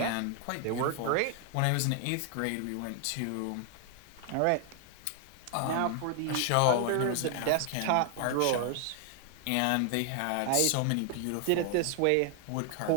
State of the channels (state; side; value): different; both; correlation 0.00